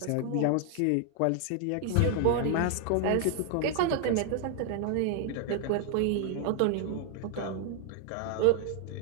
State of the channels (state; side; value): different; both; correlation 0.00